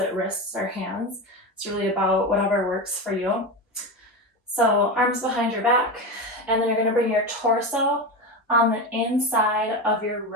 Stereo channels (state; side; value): normal; both; correlation 0.20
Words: wrists or hands. It's really about whatever works for you. So arms behind your back, and then you're going to bring your torso on the inside of your